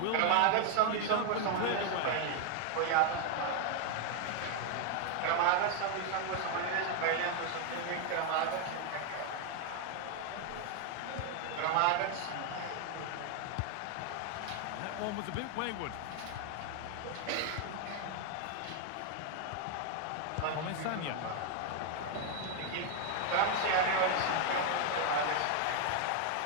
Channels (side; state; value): both; different; correlation 0.01